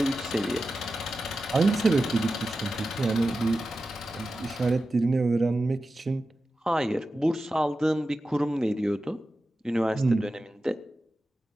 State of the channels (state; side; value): normal; both; correlation 0.93